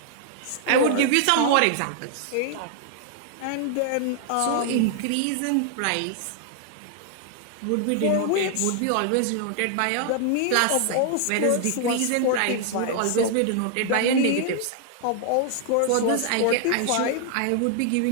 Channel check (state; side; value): different; both; correlation 0.00